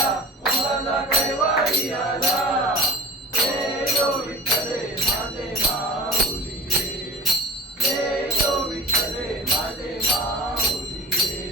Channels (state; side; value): normal; both; correlation 0.34